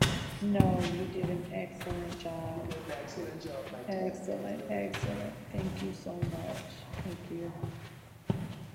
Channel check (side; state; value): both; identical; correlation 1.00